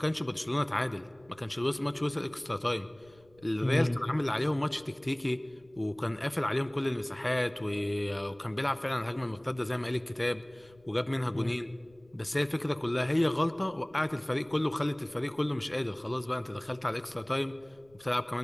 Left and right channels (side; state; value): left; noise; rumble, 29 dB below the sound